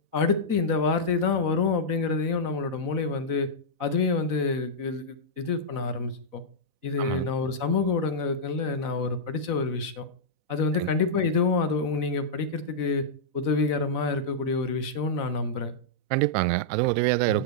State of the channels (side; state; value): left; late; 4.0 ms